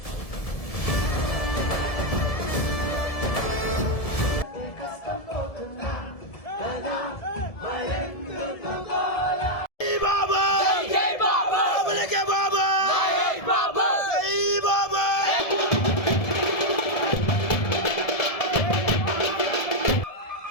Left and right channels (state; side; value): late; right; 1.7 ms